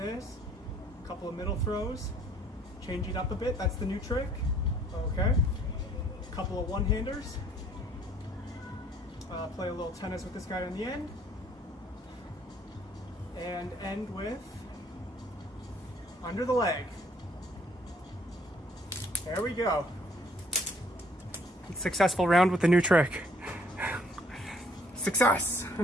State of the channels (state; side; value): normal; both; correlation 0.62